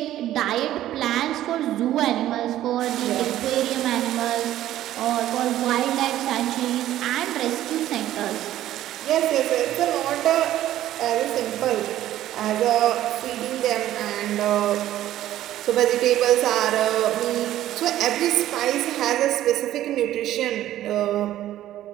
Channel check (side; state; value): left; quieter; 13.3 dB